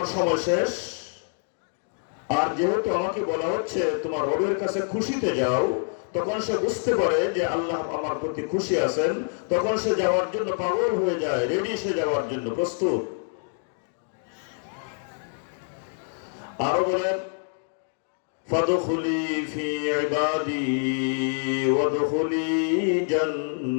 সময় শেষ, আর যেহেতু আমাকে বলা হচ্ছে তোমার রবের কাছে খুশিতে যাও, তখন সে বুঝতে পারে যে আল্লাহ আমার প্রতি খুশি আছেন। তখন সে যাওয়ার জন্য পাগল হয়ে যায়, রেডি, সে যাওয়ার জন্য প্রস্তুত। আরো বলেন, ফাদখুলি ফি ইবাদি ওয়াদখুলি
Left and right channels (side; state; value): right; silent; 61 dB below the other